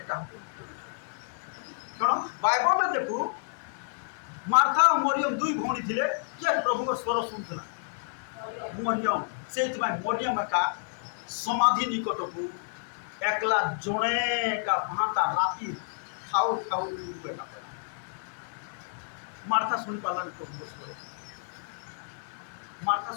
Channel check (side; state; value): right; silent; digital silence